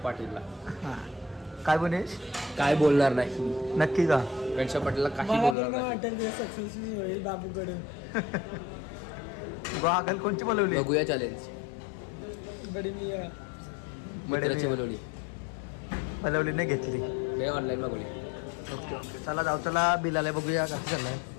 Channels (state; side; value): drops out; right; at 5.6 s